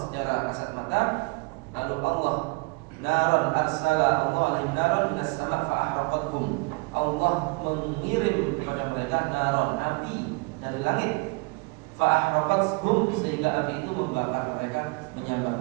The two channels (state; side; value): quieter; left; 29.2 dB